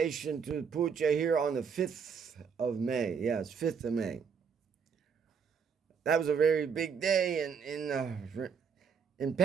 to puja here on the 5th of May. Yes, 5th of May. That was a very big day in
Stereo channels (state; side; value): quieter; left; 6.5 dB